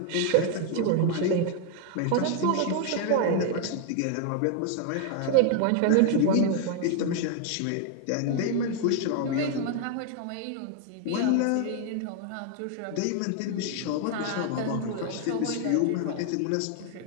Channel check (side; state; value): both; different; correlation 0.00